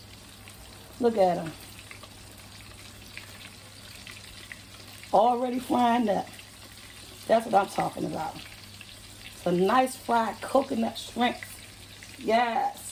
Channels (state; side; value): identical; both; correlation 1.00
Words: Look at them. Already frying up. That's what I'm talking about. It's a nice fried coconut shrimp.